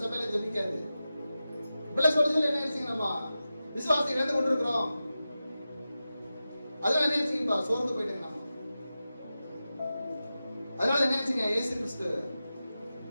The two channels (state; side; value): inverted; both; correlation -0.93